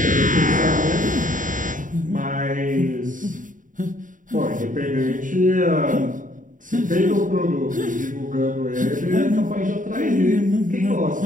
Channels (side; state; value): left; late; 0.38 ms